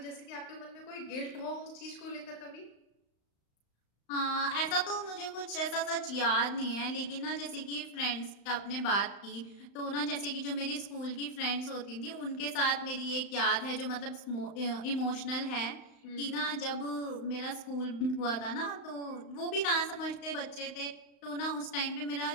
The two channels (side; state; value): right; late; 35 ms